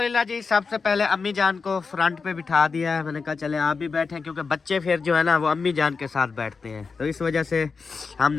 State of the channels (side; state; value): right; quieter; 4.8 dB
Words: जी, सबसे पहले अम्मी जान को फ्रंट पे बिठा दिया है। मैंने कहा चले आप भी बैठे, क्योंकि बच्चे फिर जो है ना वो अम्मी जान के साथ बैठते हैं, तो इस वजह से